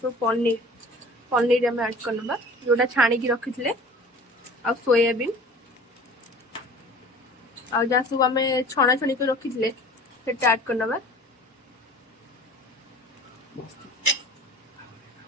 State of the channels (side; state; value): both; normal; correlation 0.44